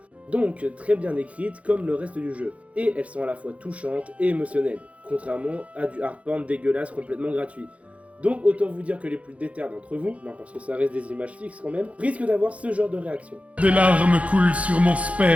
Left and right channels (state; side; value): late; left; 0.064 ms